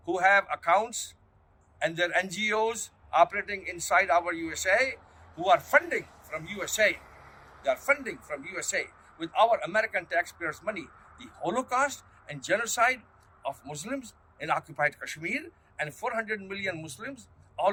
who have accounts and their NGOs operating inside our USA, who are funding from USA. They are funding from USA with our American taxpayers' money the Holocaust and genocide of Muslims in occupied Kashmir and 400 million Muslims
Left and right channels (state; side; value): identical; both; correlation 1.00